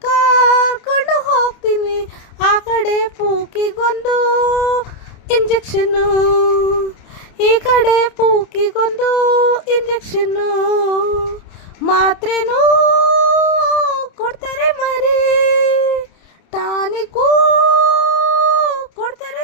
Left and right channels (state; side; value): late; right; 29 ms